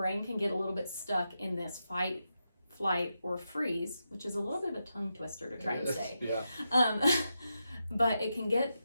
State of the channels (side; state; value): both; inverted; correlation -0.87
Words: can get a little bit stuck in this fight, flight, or freeze, which is a little bit of a tongue twister to try and say. Yeah. But it can get